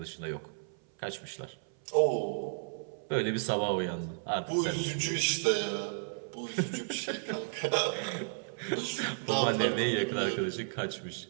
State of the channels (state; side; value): silent; left; 56 dB below the other